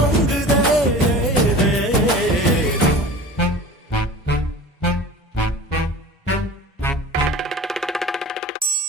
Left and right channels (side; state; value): both; normal; correlation 0.38